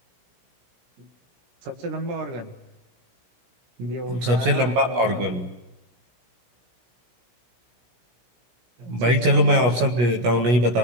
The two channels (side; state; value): left; late; 17 ms